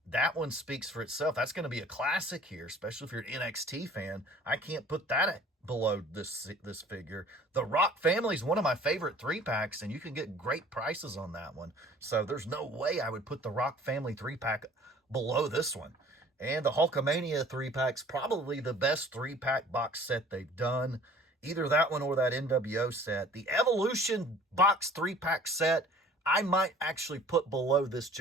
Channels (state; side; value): normal; both; correlation 0.50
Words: That one speaks for itself. That's going to be a classic here, especially if you're an NXT fan. I can't put that below this figure. The Rock Family is one of my favorite 3-packs, and you can get great prices on that one. So there's no way I would put the Rock Family 3-pack below this one. And the Hulkamania 3-pack's probably the best 3-pack box set they've done. Either that one or that NWO set. The Evolution box 3-pack set, I might actually put below this